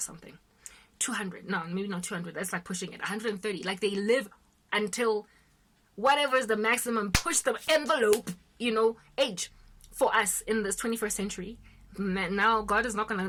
200. No, maybe not 200. That's like pushing it. 130. Like they live until whatever is the maximum, push the envelope, age for us in this 21st century. Now God is not going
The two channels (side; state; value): both; identical; correlation 1.00